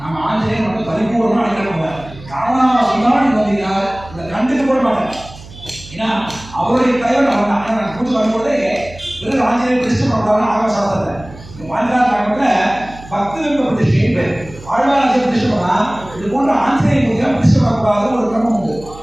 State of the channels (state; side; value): noise; right; hum, 18 dB below the sound